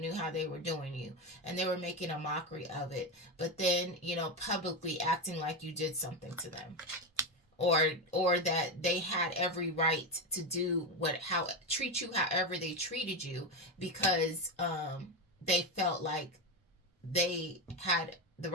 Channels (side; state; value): both; normal; correlation 0.13